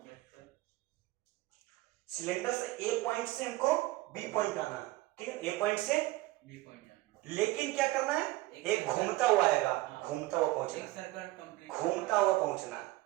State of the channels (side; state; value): left; quieter; 18.7 dB